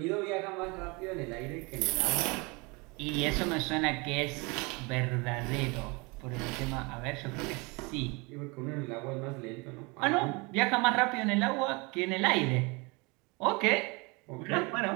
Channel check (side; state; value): left; quieter; 27.7 dB